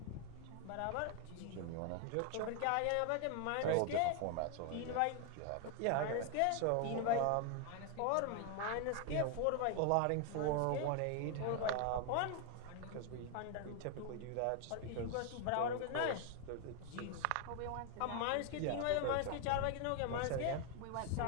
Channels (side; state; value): both; different; correlation 0.00